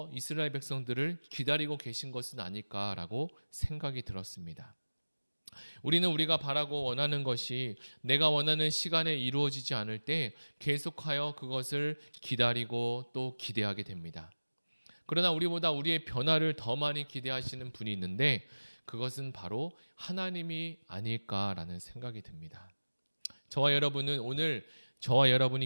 이스라엘 백성들을 기다리고 계신 것은 아닐까라고 생각이 들었습니다. 우리는 우리가 바라고 원하는 것이 내가 원하는 시간에 이루어지지 않을 때 계속하여 그것을 기다리고 또 기대하게 됩니다. 그러나 우리보다 우리의 변화를 더 많이 기대하시는 분이 있는데 그것은 바로 하나님이 아닐까라는 생각이 듭니다. 저와 여러분은 오늘 저와 여러분이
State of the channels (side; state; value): both; inverted; correlation -1.00